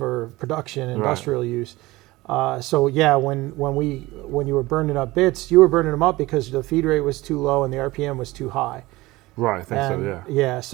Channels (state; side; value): quieter; left; 19.8 dB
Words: production, industrial use. So yeah, when you were burning up bits, you were burning them up because the feed rate was too low and the RPM was too high. Right, I think so, yeah. Yeah,